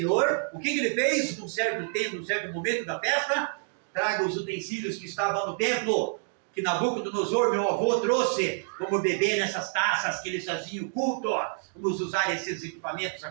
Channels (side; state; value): left; silent; digital silence